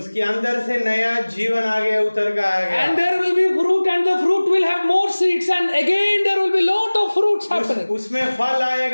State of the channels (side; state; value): both; inverted; correlation -1.00